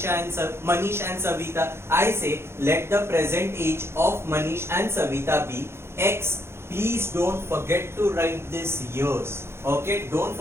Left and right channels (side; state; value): left; late; 0.12 ms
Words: and Savita। I say let the present age of Manish and Savita be X। Please don't forget to write this years, okay, don't